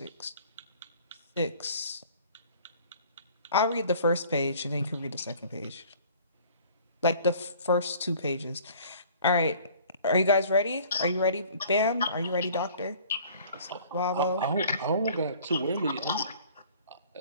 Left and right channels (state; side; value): inverted; both; correlation -0.51